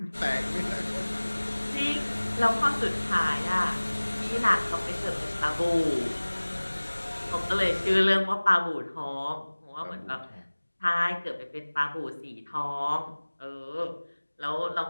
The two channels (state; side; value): inverted; both; correlation -1.00